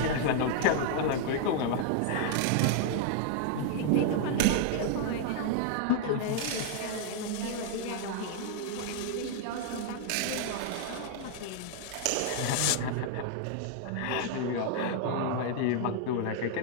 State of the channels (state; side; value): different; both; correlation 0.00